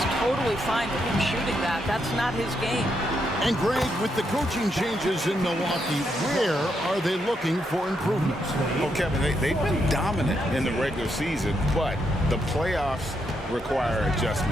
totally fine with him shooting that. That's not his game. And Greg, with the coaching changes in Milwaukee, where are they looking for improvements? Well, Kevin, they've been dominant in the regular season, but the playoffs require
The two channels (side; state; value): both; normal; correlation 0.79